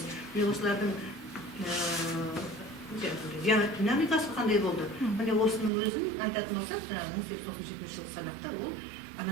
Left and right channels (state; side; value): drops out; left; at 5.7 s